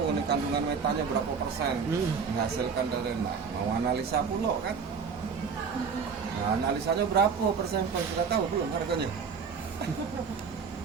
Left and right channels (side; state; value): left; quieter; 5.9 dB